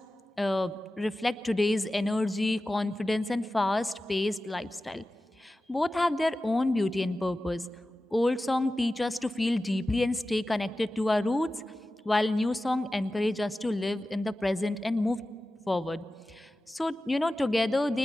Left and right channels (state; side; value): normal; both; correlation 0.95